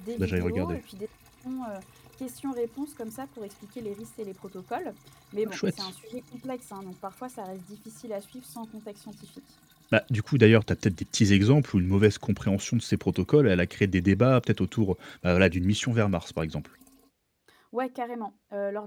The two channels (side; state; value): both; identical; correlation 1.00